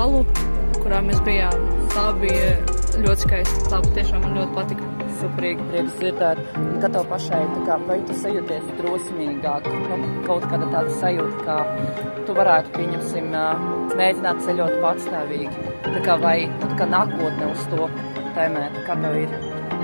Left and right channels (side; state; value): both; inverted; correlation -1.00